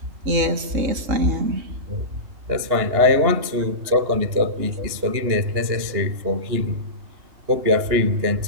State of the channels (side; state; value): left; late; 2.9 ms